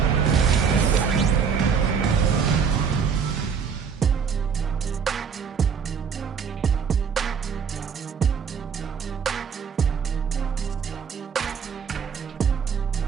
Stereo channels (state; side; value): quieter; left; 6.5 dB